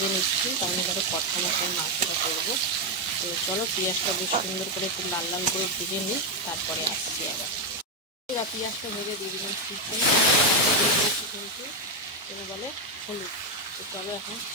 নিচ্ছি, কারণ এবারে কথা মতন মাংসটা করবো। তো চলো পেঁয়াজটা বেশ সুন্দর করে একটু লাল লাল করে ভেজে নিই, তারপরে আসছি আবার। পেঁয়াজটা ভেজে দিয়ে দিলাম চিকেন, কিন্তু এটা বলে হলুদ। তো চলো এখন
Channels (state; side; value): normal; both; correlation 0.03